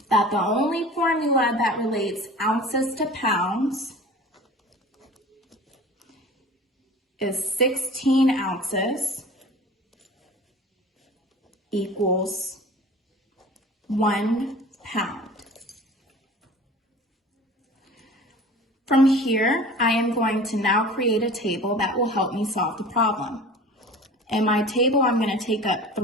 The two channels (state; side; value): normal; both; correlation 0.41